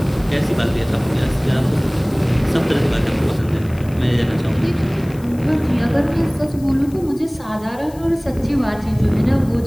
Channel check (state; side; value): noise; left; hiss, 24 dB below the sound